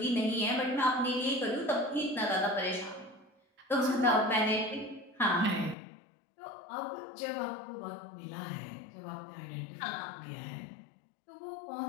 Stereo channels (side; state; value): right; drops out; at 5.8 s